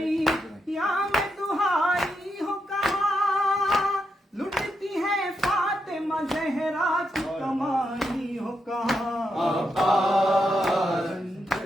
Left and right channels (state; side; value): normal; both; correlation 0.83